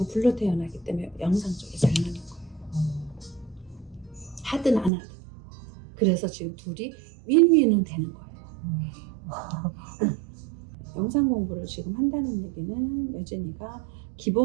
불로 태어나기 때문에 영상 쪽이 잘 맞는 거예요. 하든 안 하든. 그래서 지금 둘이 윈윈은 되는 거예요. 영상 공부를 지금 한다는 얘기는 여진이가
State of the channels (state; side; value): drops out; left; at 4.9 s